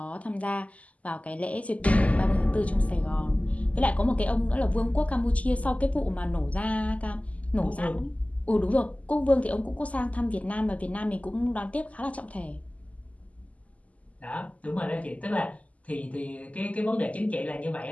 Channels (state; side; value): late; right; 0.070 ms